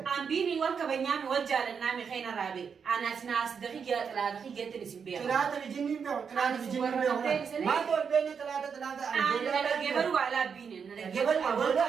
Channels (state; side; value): quieter; left; 6.5 dB